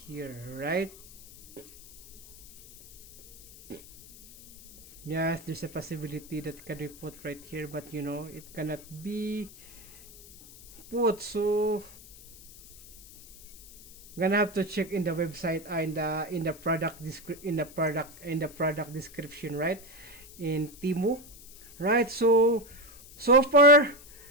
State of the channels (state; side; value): noise; left; hiss, 20 dB below the sound